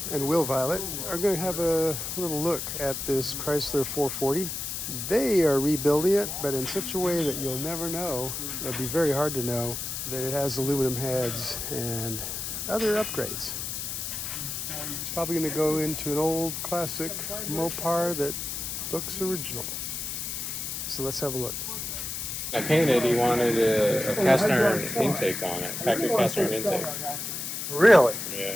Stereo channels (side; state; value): left; noise; hiss, 4 dB below the sound